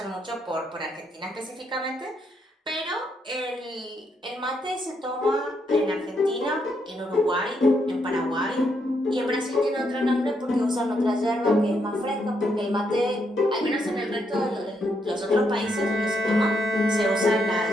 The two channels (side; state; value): both; normal; correlation 0.77